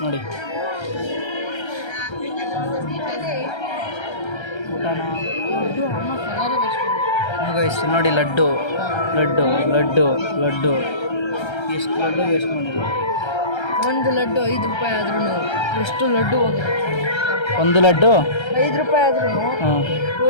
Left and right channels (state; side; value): late; right; 1.3 ms